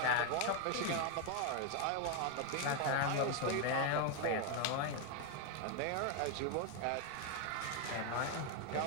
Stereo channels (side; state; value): both; different; correlation 0.01